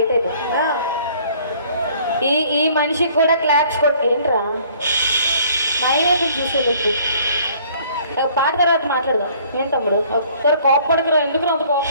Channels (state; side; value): inverted; both; correlation -0.57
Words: అయిపోయి ఈ మనిషికి కూడా క్లాప్స్ ఏంట్రా మైనస్ చూసేటట్టు పాట తర్వాత మాట్లాడదాం. ఏం తమ్ముడు ఒకసారి కోపడకురా, ఎందుకు అంత